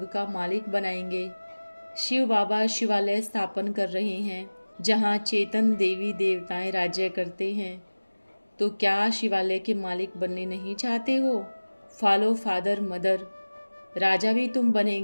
का मालिक बनाएंगे। शिव बाबा शिवालय स्थापन कर रहे हैं जहाँ चेतन देवी देवताएं राज्य करते हैं। तो क्या शिवालय के मालिक बनने नहीं चाहते हो? Follow father mother. राजा भी तुम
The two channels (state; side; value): inverted; both; correlation -1.00